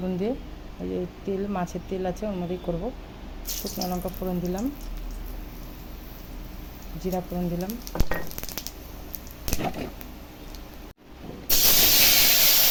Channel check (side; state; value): both; identical; correlation 1.00